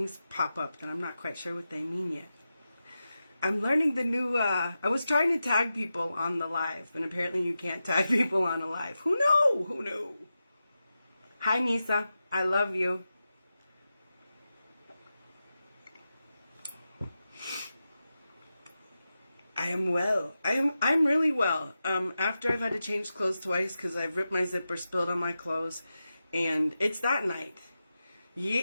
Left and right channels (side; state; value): both; inverted; correlation -0.91